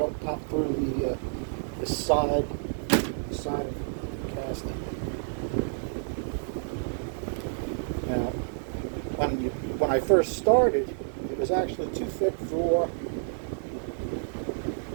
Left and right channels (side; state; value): left; silent; 58 dB below the other